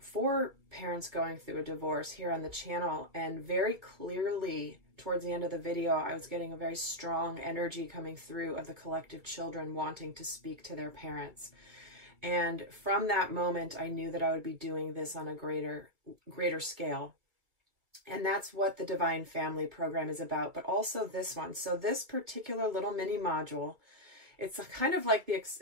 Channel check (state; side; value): late; left; 1.7 ms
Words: parents going through a divorce here on the channel, and very clearly towards the end of the video, I was getting a very strong energy coming through of the collective children wanting to speak to their parents. And from that moment, I knew that I would be doing this on a greater scale. And that's what the Divine Family program is about, but also this one. So this particular little mini module, it's kind of like the